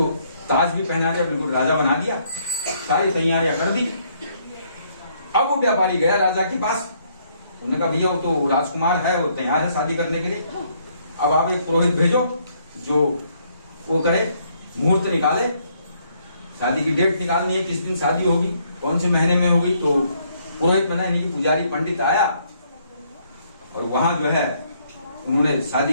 ताज भी पहना दिया, बिल्कुल राजा बना दिया, सारी तैयारियां कर दी। अब वो व्यापारी गया राजा के पास, उन्होंने कहा भैया वो तो राजकुमार है, वो तैयार है शादी करने के लिए, अब आप एक पुरोहित भेजो जो वो करे, मुहूर्त निकाले, शादी की डेट निकालनी है, किस दिन शादी होगी, कौन से महीने में होगी। तो पुरोहित बना, यानी कि पुजारी पंडित आया और वहां जो है उन्होंने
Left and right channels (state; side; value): inverted; both; correlation -0.69